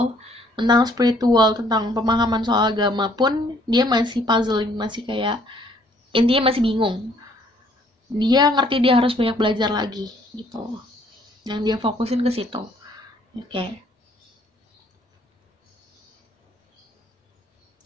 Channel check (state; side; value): normal; both; correlation 0.63